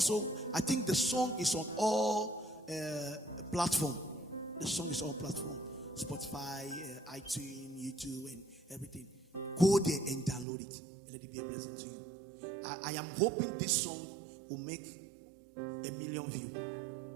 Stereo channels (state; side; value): drops out; left; at 10.5 s